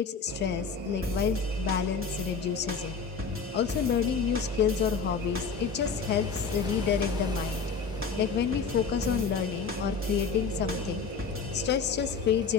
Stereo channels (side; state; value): right; quieter; 5.3 dB